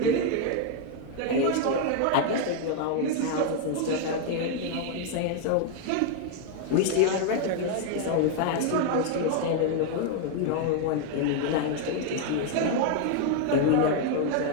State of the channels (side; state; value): both; different; correlation 0.01